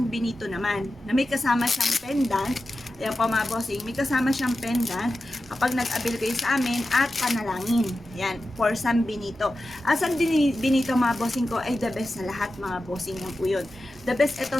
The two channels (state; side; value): normal; both; correlation 0.92